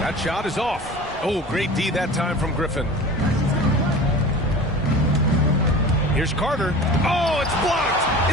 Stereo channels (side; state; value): both; normal; correlation 0.38